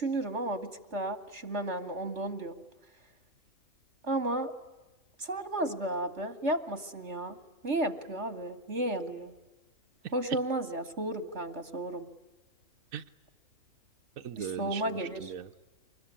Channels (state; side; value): late; left; 3.3 ms